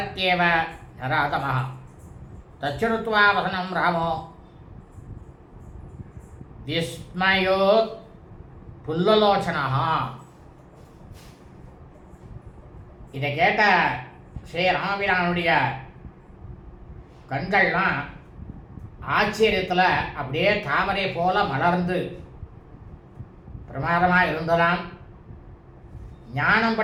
நராதமஹ தச்சுருத்வா வசனம் ராமோ விஸ்மயோ புல்லலோச்சனா. இதை கேட்ட ஸ்ரீராமபிரானுடைய கண்கள்லாம் ஆச்சரியத்தில் அப்படியே தாமரை போல மலர்ந்து பிரமாதமாக இருந்ததாம். ஞானம்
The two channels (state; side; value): identical; both; correlation 1.00